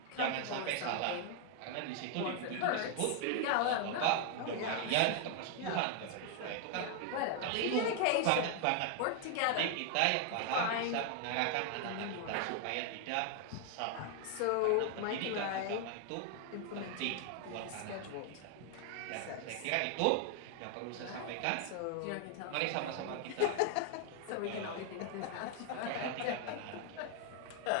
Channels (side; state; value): both; different; correlation 0.00